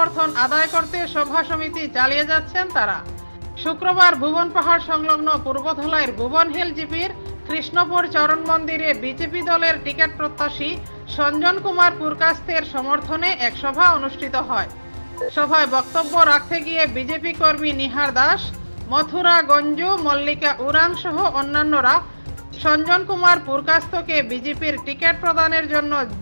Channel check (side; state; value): both; inverted; correlation -1.00